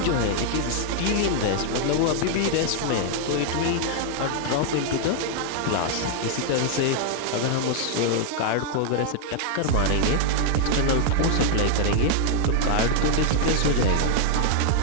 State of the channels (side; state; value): both; different; correlation 0.00